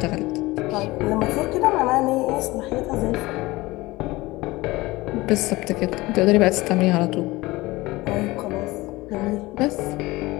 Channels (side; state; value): right; quieter; 20.4 dB